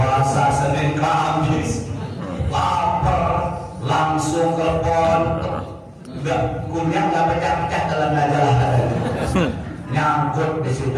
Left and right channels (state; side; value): identical; both; correlation 1.00